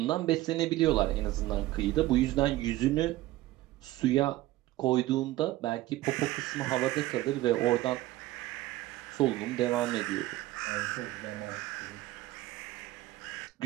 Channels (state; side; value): quieter; left; 16.7 dB